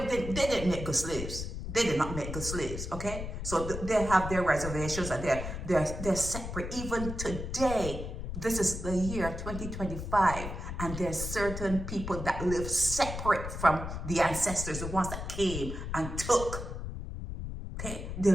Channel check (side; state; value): left; noise; rumble, 6 dB below the sound